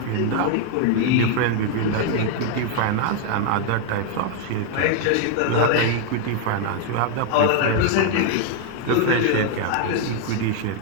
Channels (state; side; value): different; both; correlation 0.01